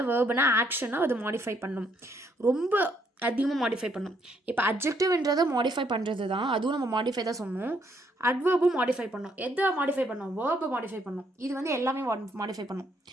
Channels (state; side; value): normal; both; correlation 0.71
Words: வேர்புனா ஆக்ஷனை அது மாடிஃபை பண்ணும். ரொம்ப அதிகமாக மாடிஃபை பண்ணும். இப்போ அட்ஜெக்டிவ்ன்றதை மாடிஃபை பண்ணுறது தான், அதுவும் நம்ம மாடிஃபை தான் சொன்னோம். அட்வர்பும் மாடிஃபை பண்ணோம். எதை மாடிஃபை பண்ணோம்? வேர்பை மாடிஃபை பண்ணோம். இது வந்து எல்லாமே மாடிஃபை பண்ணும்.